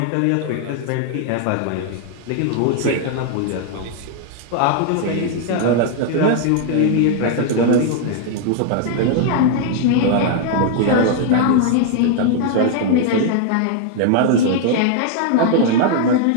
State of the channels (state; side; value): different; both; correlation 0.00